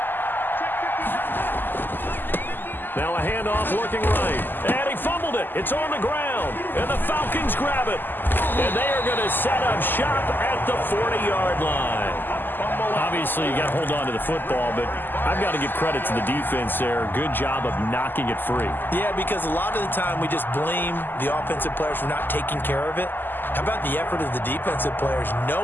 Now a handoff looking right. And he fumbled it. It's on the ground. And the Falcons grab it. And they are going to set up shop at the 40-yard line. Obviously, you got to hold on to the football, but I've got to give credit to the defense there. Good job of knocking it free. Yeah, because a lot of the time we just blame the offensive players for not taking care of it. How about the effort of the defensive players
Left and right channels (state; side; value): late; right; 0.092 ms